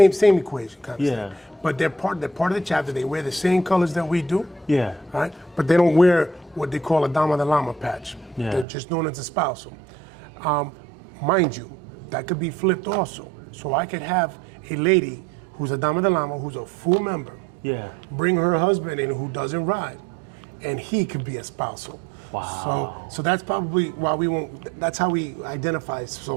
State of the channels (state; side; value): drops out; left; at 8.7 s